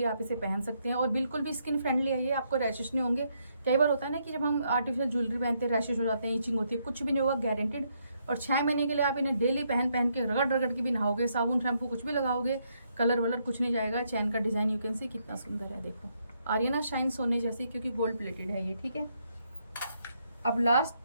आप इसे पहन सकते हैं, और बिल्कुल भी स्किन फ्रेंडली है ये, आपको रैशेस नहीं होंगे। कई बार होता है ना कि जब हम आर्टिफिशियल ज्वेलरी पहनते हैं रैशेस हो जाते हैं, इचिंग होती है, कुछ भी नहीं होगा, गारंटेड। और 6 महीने के लिए आप इन्हें डेली पहन के रगड़ रगड़ के भी नहाओगे, साबुन शैम्पू कुछ भी लगाओगे, कलर वलर कुछ नहीं जाएगा। चैन का डिजाइन यू कैन सी कितना सुंदर है, देखो आ रही है ना शाइन सोने जैसी, क्योंकि गोल्ड प्लेटेड है ये, ठीक है। अब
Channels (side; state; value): both; inverted; correlation -0.76